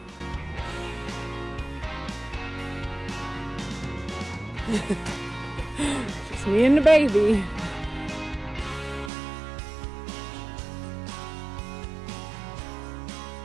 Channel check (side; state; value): left; drops out; at 9.1 s